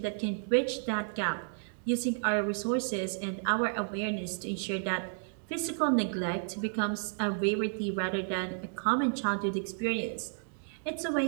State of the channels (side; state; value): left; silent; digital silence